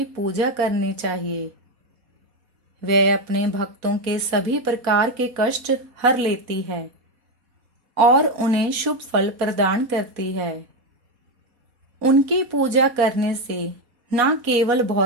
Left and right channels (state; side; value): late; left; 4.1 ms